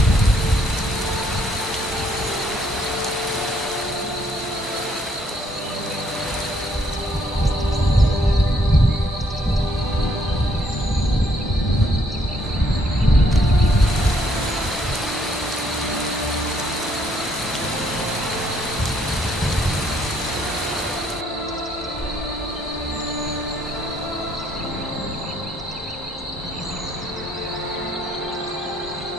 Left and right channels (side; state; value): both; normal; correlation 0.68